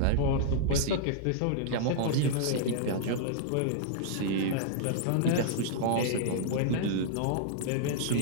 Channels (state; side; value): different; both; correlation -0.01